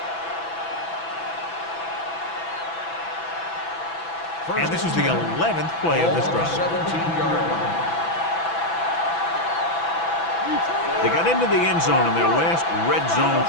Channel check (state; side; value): late; right; 6.0 ms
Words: And this is the 11th play of this drive. 17-yard line. They got into the end zone in their last red zone